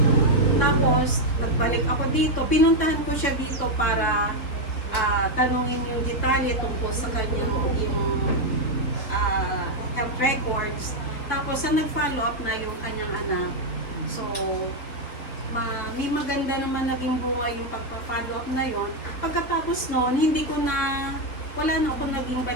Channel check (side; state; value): right; late; 3.8 ms